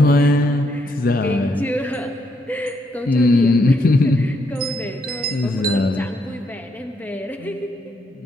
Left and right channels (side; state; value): both; normal; correlation 0.75